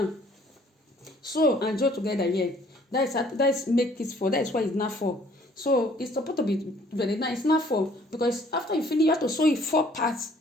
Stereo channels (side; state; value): both; normal; correlation 0.59